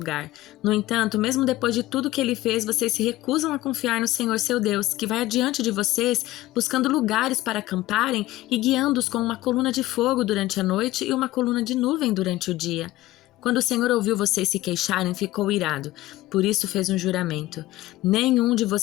No entanto, mesmo depois de tudo que ele fez, vocês se recusam a confiar no Senhor seu Deus, que vai adiante de vocês, buscando lugares para acamparem e guiando-os com uma coluna de fogo durante a noite e uma coluna de nuvem durante o dia. Quando o Senhor ouviu vocês se queixarem, ficou irado. Por isso fez um juramento: nenhum de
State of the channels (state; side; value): quieter; right; 16.9 dB